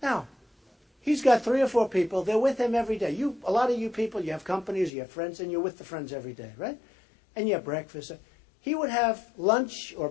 Now, he's got 3 or 4 people. They're with him every day. A lot of you people, you have companies, you have friends, and you're with the friends every day, right? And you have breakfast. He would have lunch or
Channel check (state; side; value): drops out; right; at 4.9 s